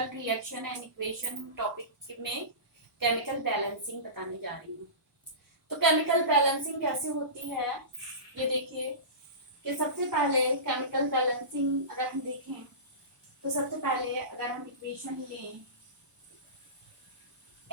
reaction and equation topic में केमिकल बैलेंसिंग बताने जा रही हूँ। तो केमिकल बैलेंसिंग कैसे होती है, ये देखिए कि सबसे पहले केमिकल बैलेंसिंग अगर हम देखें तो सबसे पहले अगर हम इक्वेशन लें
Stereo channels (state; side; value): late; left; 1.0 ms